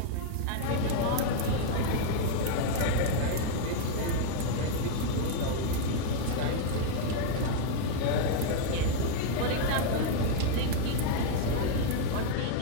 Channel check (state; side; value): different; both; correlation 0.00